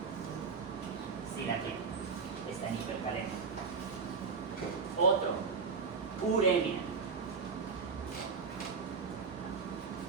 Sí, aquí está en hipercalemia. Otro, uremia.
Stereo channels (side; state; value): left; quieter; 5.2 dB